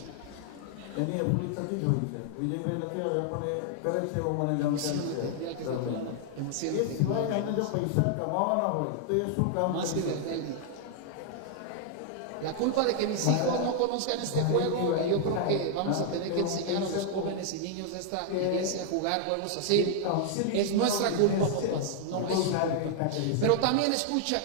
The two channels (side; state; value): both; different; correlation 0.00